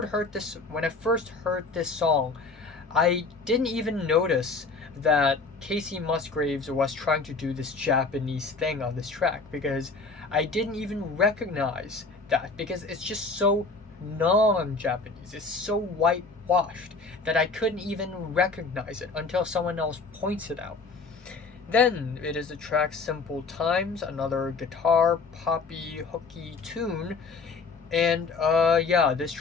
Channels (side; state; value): right; quieter; 4.1 dB